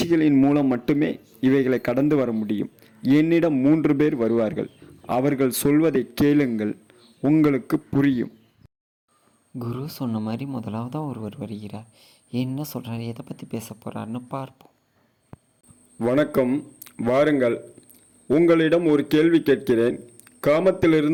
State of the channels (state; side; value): identical; both; correlation 1.00